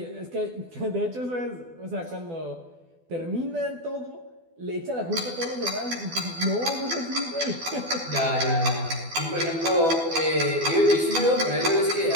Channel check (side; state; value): left; late; 12 ms